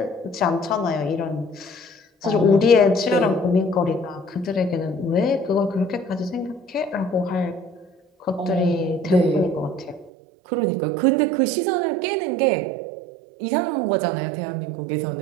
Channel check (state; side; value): drops out; left; at 10.1 s